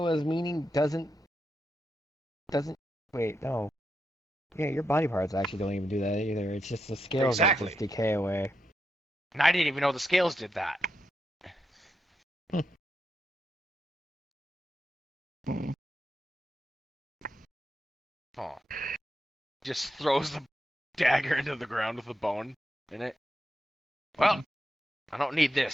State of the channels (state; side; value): normal; both; correlation 0.85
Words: meaning doesn't. Wait, no. Yeah, your body parts actually don't even do that either. It's just the scales that Exactly. just decay away. And I didn't even know the scales did that. Oh. Just throws the dagger into the ground with the bone in it. Well, I don't need